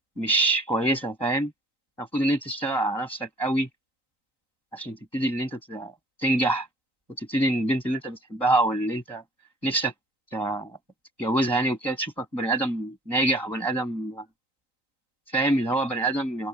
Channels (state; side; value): late; right; 3.9 ms